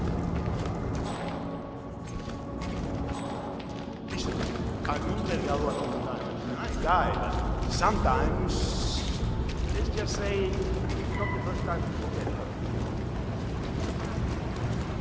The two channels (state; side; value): identical; both; correlation 1.00